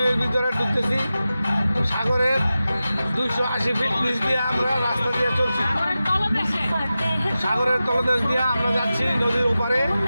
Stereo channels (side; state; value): both; inverted; correlation -0.94